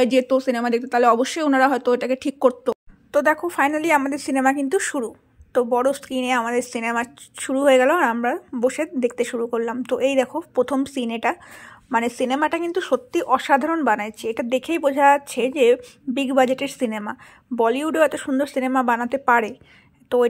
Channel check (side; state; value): both; identical; correlation 1.00